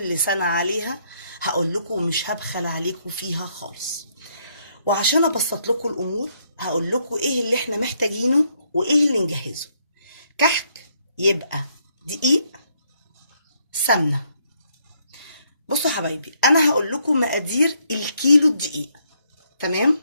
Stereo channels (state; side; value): inverted; both; correlation -0.72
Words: سنه عليها هقول لكم، ومش هبخل عليكم فيها خالص. وعشان ابسط لكم الامور هقول لكم ايه اللي احنا محتاجينه وايه اللي نجهزه. كحك يبقى دقيق، سمنه. بصوا حبايبي، انا هقول لكم مقادير الكيلو الدقيق. تمام؟